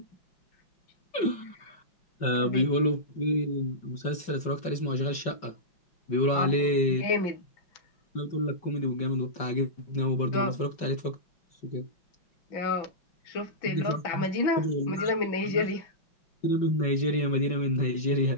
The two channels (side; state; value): right; late; 5.4 ms